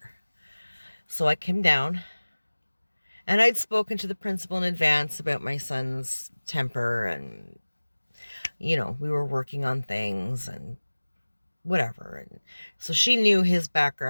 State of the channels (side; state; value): both; inverted; correlation -1.00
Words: So I came down, and I'd spoken to the principal in advance about my son's temper, and, we were working on things and whatever. And so she knew his